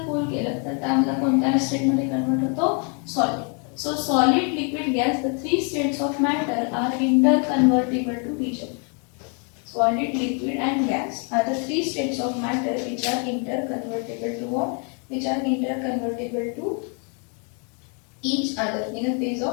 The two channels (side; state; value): right; quieter; 38.5 dB